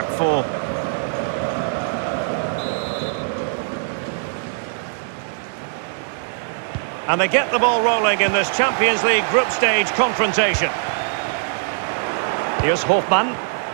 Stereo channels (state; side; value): silent; left; digital silence